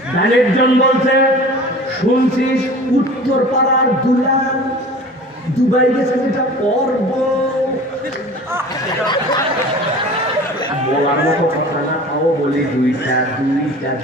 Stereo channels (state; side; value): normal; both; correlation 0.41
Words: একজন বলছে শুনছিস উত্তর পাড়ার দুলাল দুবাই গেছে, যেটা পর্ব বলার মতো কথা না, তাও বলি দুইটা